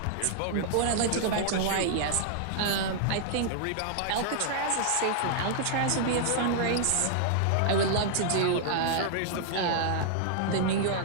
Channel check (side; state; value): both; different; correlation -0.01